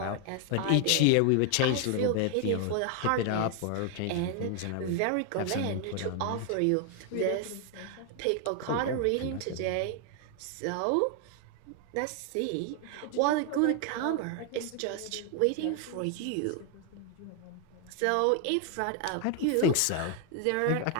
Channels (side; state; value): both; different; correlation 0.00